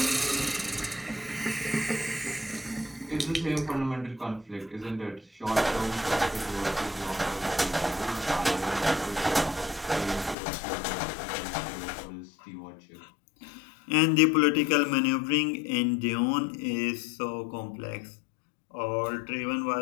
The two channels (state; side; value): drops out; right; at 10.4 s